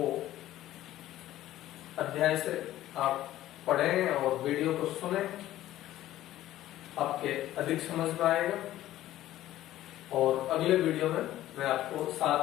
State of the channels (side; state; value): right; quieter; 14.1 dB